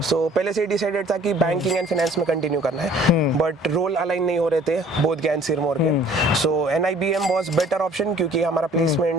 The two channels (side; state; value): both; normal; correlation 0.53